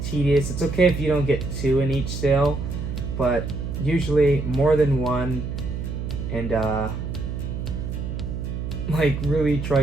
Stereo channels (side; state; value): right; noise; hum, 5 dB below the sound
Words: tedious. It's okay if you don't get 2 in each cell, but usually more than 1. And like really try